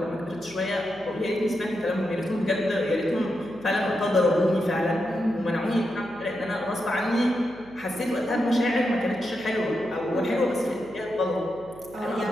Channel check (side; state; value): right; noise; hum, 22 dB below the sound